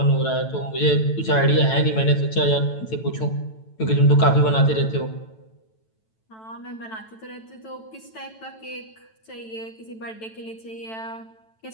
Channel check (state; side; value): late; right; 9.1 ms